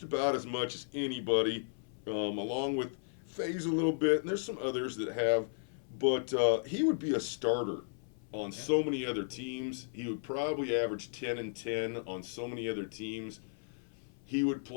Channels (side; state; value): right; silent; 55 dB below the other